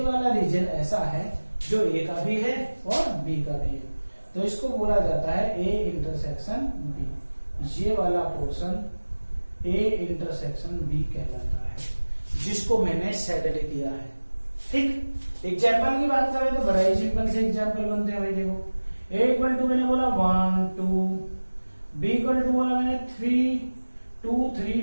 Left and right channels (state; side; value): inverted; both; correlation -1.00